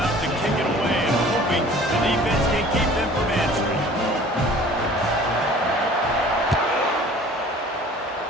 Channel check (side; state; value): both; normal; correlation 0.48